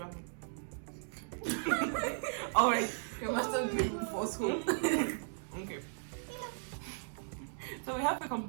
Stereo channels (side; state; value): left; silent; digital silence